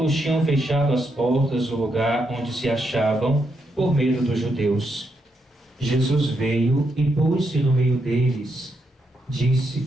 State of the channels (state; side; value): normal; both; correlation 0.80